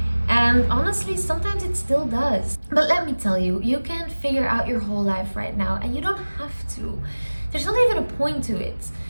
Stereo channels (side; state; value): both; inverted; correlation -1.00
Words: And honestly, sometimes it still does. But let me tell you, you can't figure out your whole life right now, and you don't have to. There's not even a point to it.